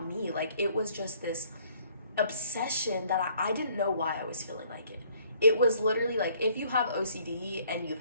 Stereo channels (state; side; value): inverted; both; correlation -0.61